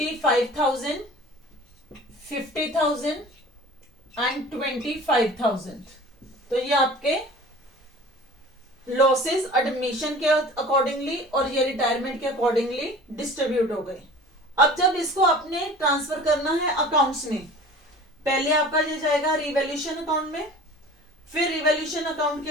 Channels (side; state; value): both; normal; correlation 0.42